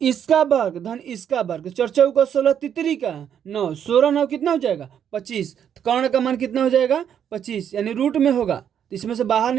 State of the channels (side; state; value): left; quieter; 8.9 dB